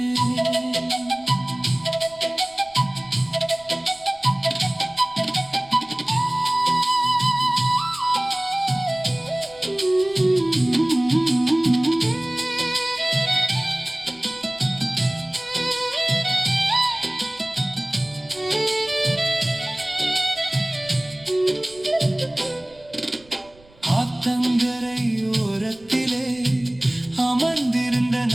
ஆத்தங்கரை ஓரத்திலே அமர்ந்திருந்த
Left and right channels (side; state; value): right; noise; rumble, 27 dB below the sound